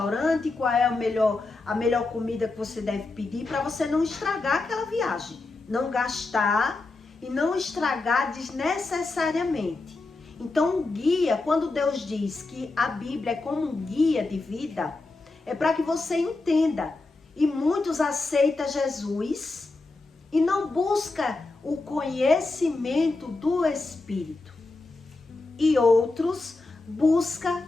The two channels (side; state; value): right; quieter; 3.4 dB